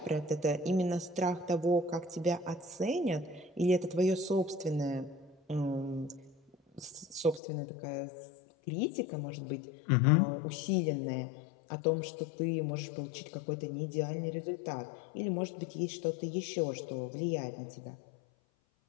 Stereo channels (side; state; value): right; drops out; at 7.4 s